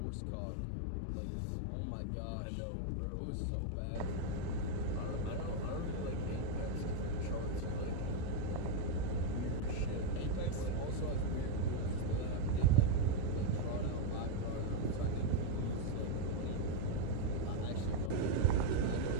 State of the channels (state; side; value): different; both; correlation 0.01